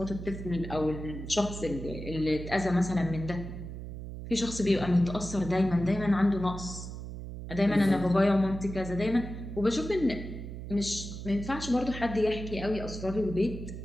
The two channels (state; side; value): noise; right; hum, 9 dB below the sound